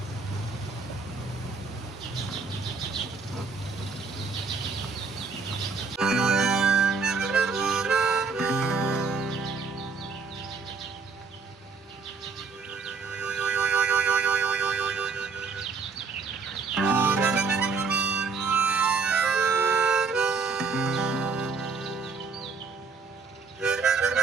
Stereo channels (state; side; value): quieter; left; 4.9 dB